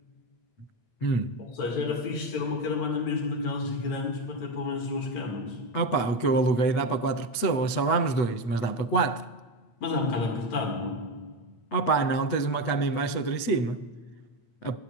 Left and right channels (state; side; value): late; right; 8.2 ms